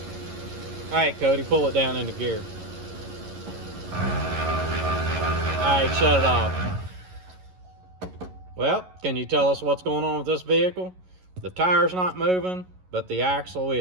All right, Cody, pull it down into gear. All right, shut it off. Well, can you tell us what's going on with this vehicle? The tire's not moving, but the axle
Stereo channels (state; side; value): late; left; 11 ms